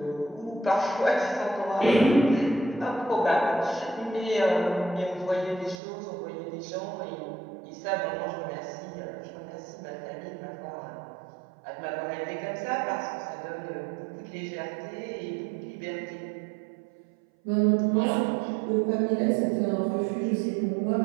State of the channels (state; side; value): drops out; left; at 5.8 s